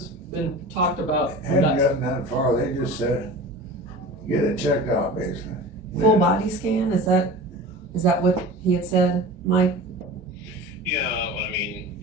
been talked about? Hadn't gotten that far, they just said, get it checked out basically. Full body scan, is that what he had said, Mike? Yeah, I mean,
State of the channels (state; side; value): normal; both; correlation 0.35